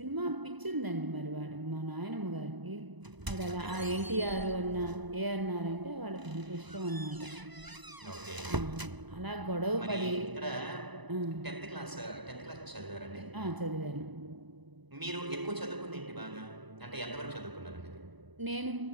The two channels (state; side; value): late; left; 1.0 ms